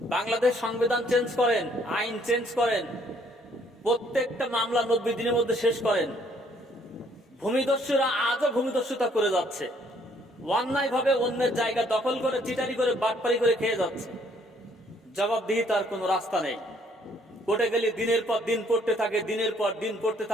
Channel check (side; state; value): both; normal; correlation 0.65